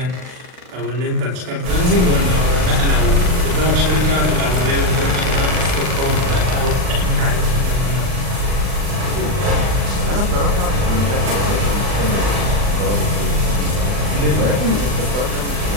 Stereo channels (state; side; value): late; left; 39 ms